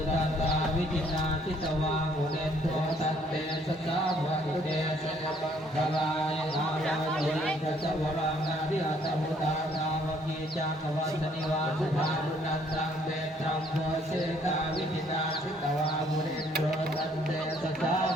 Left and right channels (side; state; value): both; normal; correlation 0.64